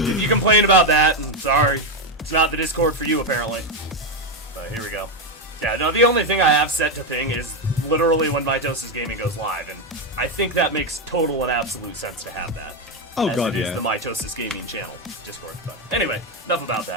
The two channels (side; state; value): both; normal; correlation 0.08